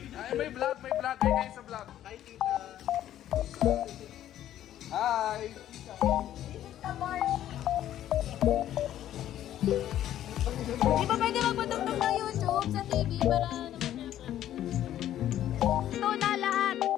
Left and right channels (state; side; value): quieter; right; 12.0 dB